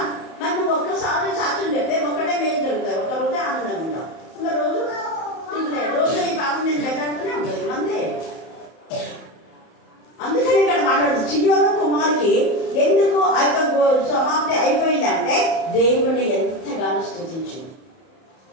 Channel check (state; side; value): late; right; 31 ms